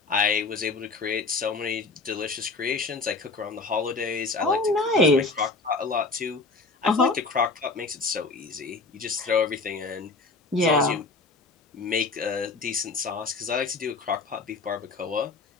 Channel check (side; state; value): right; quieter; 3.7 dB